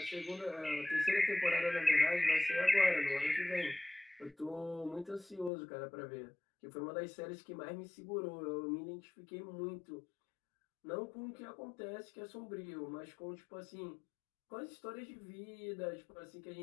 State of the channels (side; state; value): right; drops out; at 5.5 s